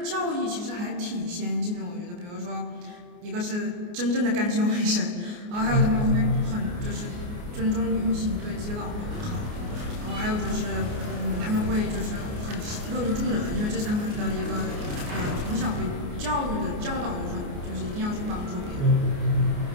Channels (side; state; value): left; late; 29 ms